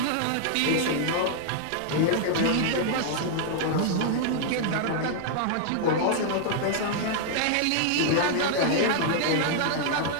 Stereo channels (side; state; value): both; different; correlation -0.01